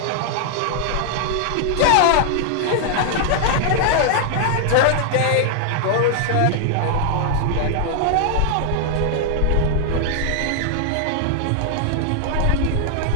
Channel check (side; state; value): both; different; correlation -0.01